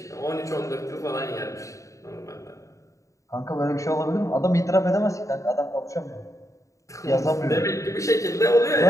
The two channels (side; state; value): right; late; 0.15 ms